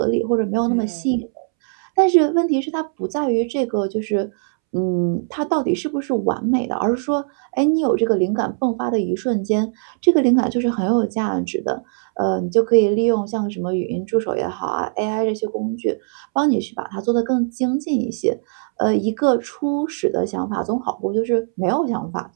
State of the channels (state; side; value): silent; left; 65 dB below the other